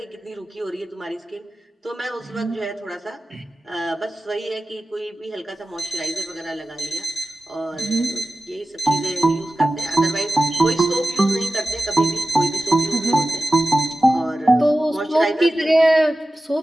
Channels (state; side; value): normal; both; correlation 0.95